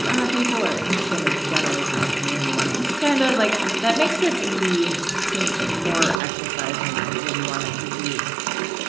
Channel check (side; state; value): left; drops out; at 6.2 s